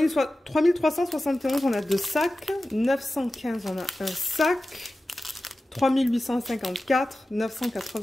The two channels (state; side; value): normal; both; correlation 0.95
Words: on a 2 sacs. 915, on a 1 sac. 3854,